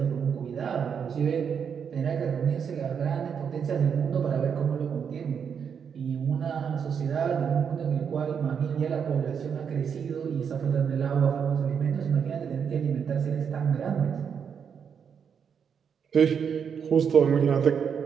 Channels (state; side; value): quieter; left; 7.1 dB